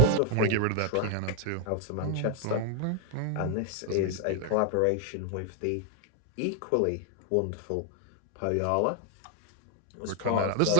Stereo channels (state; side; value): different; both; correlation 0.00